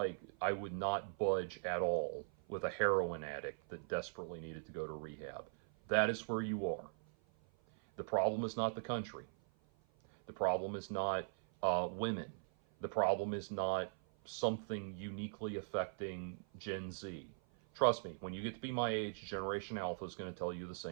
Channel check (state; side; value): silent; left; 51 dB below the other